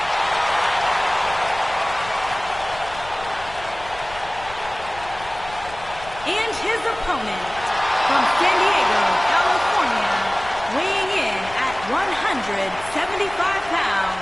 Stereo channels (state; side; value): noise; left; rumble, 17 dB below the sound